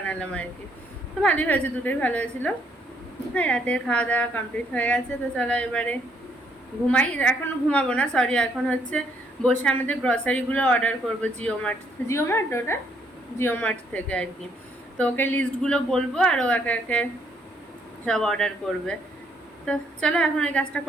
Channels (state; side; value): normal; both; correlation 0.70